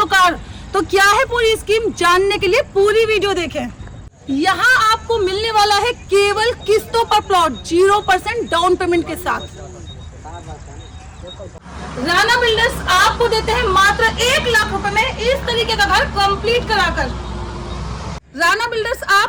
कार। तो क्या है पूरी स्कीम, जानने के लिए पूरी वीडियो देखें। यहाँ आपको मिलने वाला है केवल किस्तों पर प्लॉट 0% डाउन पेमेंट के साथ। राणा बिल्डर्स आपको देते हैं मात्र 1 लाख रुपए में इस तरीके का घर कंप्लीट कराकर। राणा बिल्डर्स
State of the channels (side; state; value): both; identical; correlation 1.00